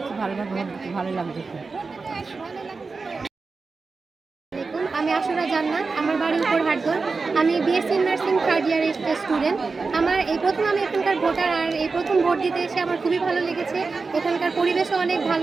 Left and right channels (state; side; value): quieter; left; 4.3 dB